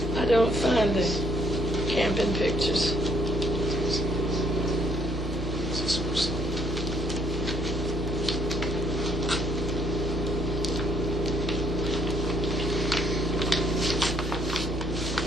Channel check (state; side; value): normal; both; correlation 0.67